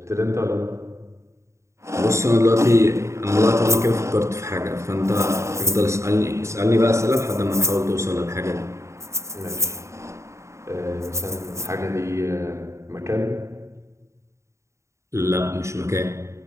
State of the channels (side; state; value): left; late; 0.14 ms